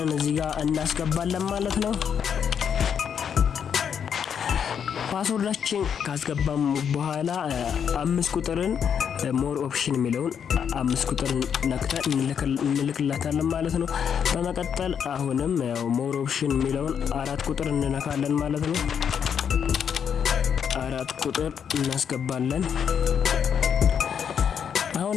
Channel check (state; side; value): quieter; right; 7.7 dB